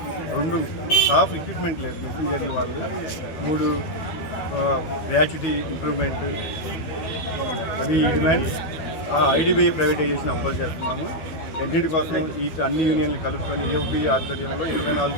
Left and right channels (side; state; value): right; late; 13 ms